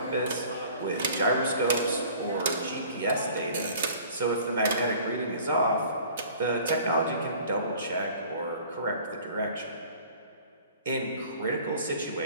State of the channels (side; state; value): both; inverted; correlation -0.49